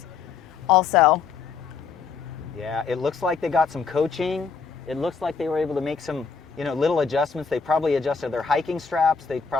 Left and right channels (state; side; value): quieter; right; 5.6 dB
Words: also. Yeah, it looks like they got some coaching. It looks like they were able to make some, little adjustments. They probably adjusted their hiking straps. They